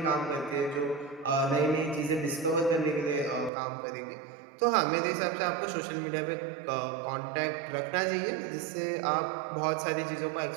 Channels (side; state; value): left; drops out; at 3.5 s